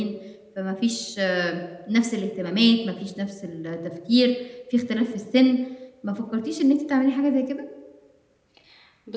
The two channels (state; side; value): identical; both; correlation 1.00